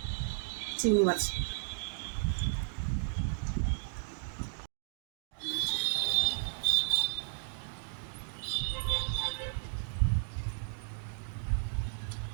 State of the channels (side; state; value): left; silent; digital silence